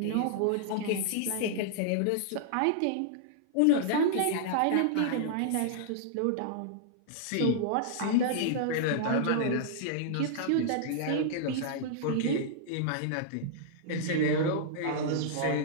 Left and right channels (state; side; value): different; both; correlation -0.01